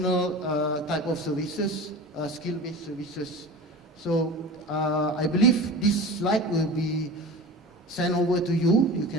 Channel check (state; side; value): normal; both; correlation 0.34